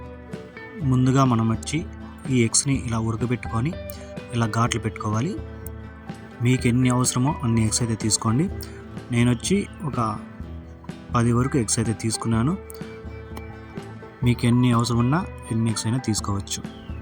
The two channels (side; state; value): both; identical; correlation 1.00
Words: ముందుగా మనం వచ్చి ఈ ఎగ్స్ని ఇలా ఉడకబెట్టుకొని ఇలా ఘాట్లు పెట్టుకోవాలి. మీకు ఎన్ని అవసరమో అన్ని ఎగ్స్ అయితే తీసుకోండి. నేను వచ్చి ఒక 10 వరకు ఎగ్స్ అయితే తీసుకున్నాను. మీకు ఎన్ని అవసరం ఉన్నా ఎన్ని ఎగ్స్ అయినా తీసుకోవచ్చు.